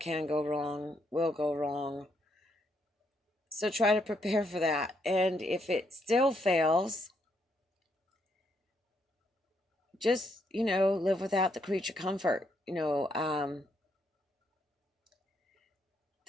go wrong will go wrong. So try to prepare for that. And if it still fails, just, live without the creature comfort.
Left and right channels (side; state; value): both; normal; correlation 0.75